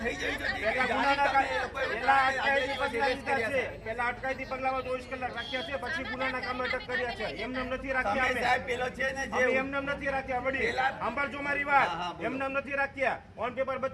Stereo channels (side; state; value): both; identical; correlation 1.00